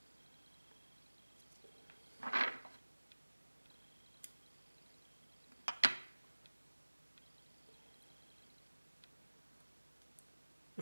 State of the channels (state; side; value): inverted; both; correlation -1.00